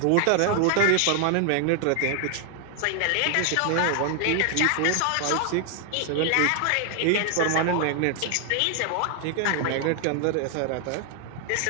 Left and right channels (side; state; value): both; different; correlation 0.00